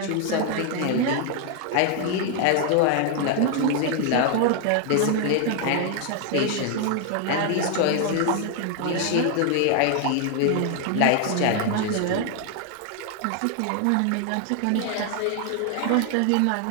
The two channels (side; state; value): both; different; correlation 0.00